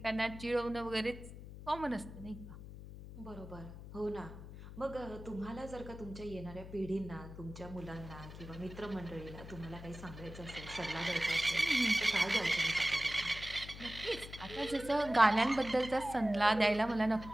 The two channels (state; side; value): noise; left; hum, 13 dB below the sound